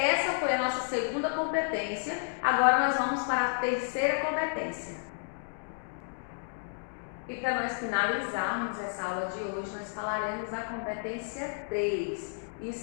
foi a nossa segunda competência, agora nós vamos para a terceira competência. E para nós finalizarmos essa aula de hoje, nós falaremos da competência 3.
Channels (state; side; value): silent; right; digital silence